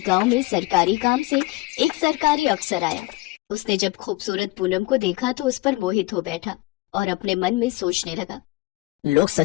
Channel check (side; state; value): right; quieter; 21.2 dB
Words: गांव में सरकारी काम से एक सरकारी अफसर आया। उसने जब खूबसूरत पूनम को देखा तो उस पर मोहित हो बैठा और अपने मन में सोचने लगा। लोग